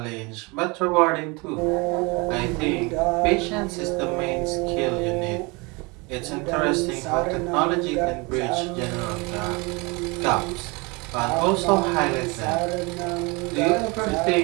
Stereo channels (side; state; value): left; quieter; 27.5 dB